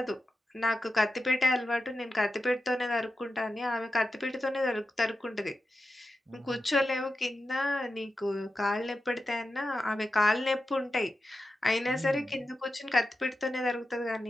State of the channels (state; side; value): normal; both; correlation 0.90